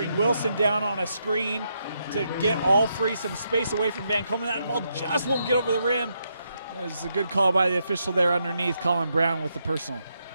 Wilson down on a screen to get Alfrey some space away from Van Komen. That ball just won't get over the rim. It's a good call by the official there underneath, Colin Brown with the personal.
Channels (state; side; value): inverted; both; correlation -0.79